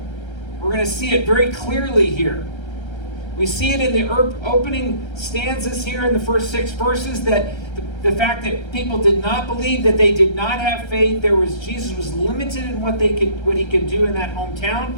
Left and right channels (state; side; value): late; right; 1.3 ms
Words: We're going to see it very clearly here. We see it in the opening stanzas here in the first 6 verses, that the fact that people did not believe, that they did not have faith. Jesus was limited in what he could do in that